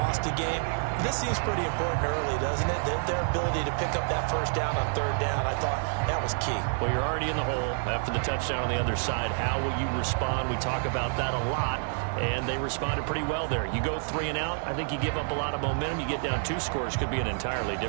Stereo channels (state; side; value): silent; left; 59 dB below the other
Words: a game. This seems pretty important early, doesn't it? Their ability to pick up that first down on 3rd down, I thought that was key. Well, you're already in the hole after the touchdown on the other side. How will you respond? We talk about that a lot, and they responded pretty well there. You go 3 and out, I think you give up a lot of momentum. You get down 2 scores, could be an entirely